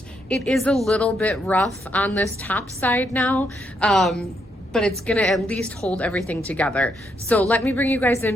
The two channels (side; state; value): both; normal; correlation 0.77